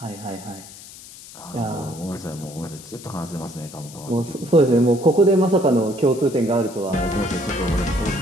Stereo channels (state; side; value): noise; left; hiss, 17 dB below the sound